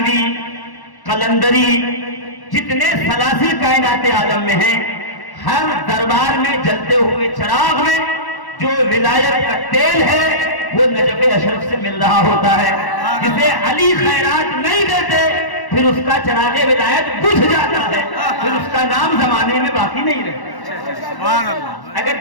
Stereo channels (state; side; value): late; right; 1.1 ms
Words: قلندری، جتنے سلاسل کائنات عالم میں ہیں، ہر دربار میں جلتے ہوئے چراغ میں جو ولایت کا تیل ہے وہ نجف اشرف سے مل رہا ہوتا ہے. جسے علی خیرات نہیں دیتے پھر اس کا چراغ ولایت بجھ جاتا ہے، پھر اس کا نام زمانے میں باقی نہیں رہتا. اگر